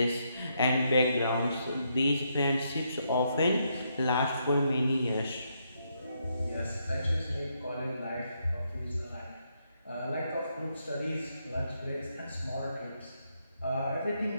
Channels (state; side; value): inverted; both; correlation -0.78